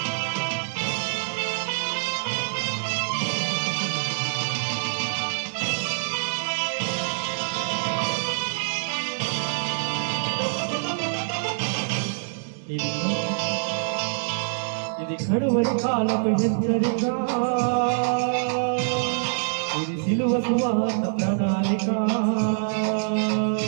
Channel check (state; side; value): silent; left; digital silence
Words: ఇది కడువరి కాలపు హెచ్చరిక, ఇది సిలువ సువార్త ప్రణాళిక.